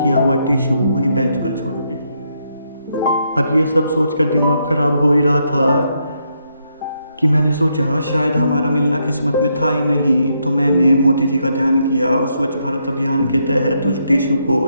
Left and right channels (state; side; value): inverted; both; correlation -0.78